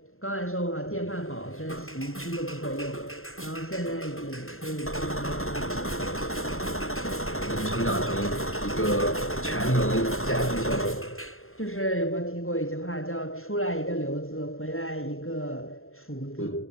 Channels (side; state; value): right; late; 0.61 ms